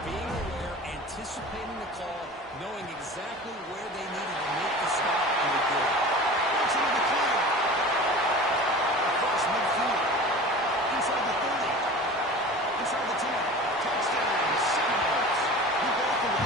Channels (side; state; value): both; normal; correlation 0.37